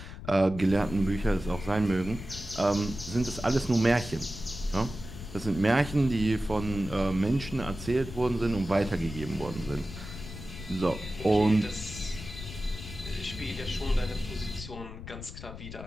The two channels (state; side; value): noise; left; rumble, 11 dB below the sound